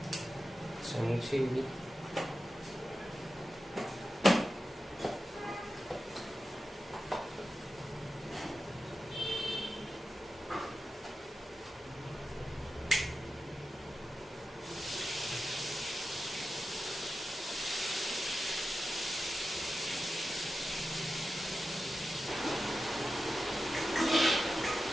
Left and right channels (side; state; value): both; normal; correlation 0.92